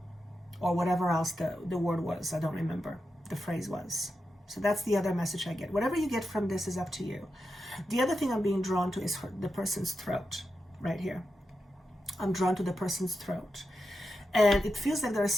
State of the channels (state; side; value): normal; both; correlation 0.89